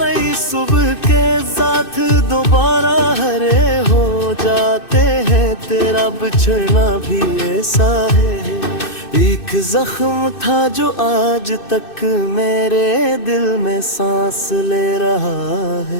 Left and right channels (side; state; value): right; late; 2.6 ms